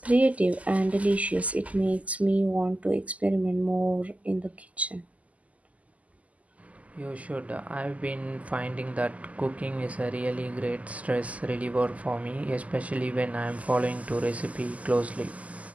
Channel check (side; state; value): left; late; 0.071 ms